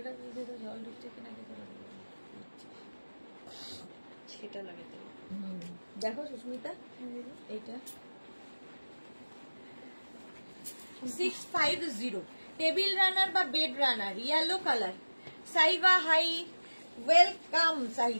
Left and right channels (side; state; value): both; inverted; correlation -1.00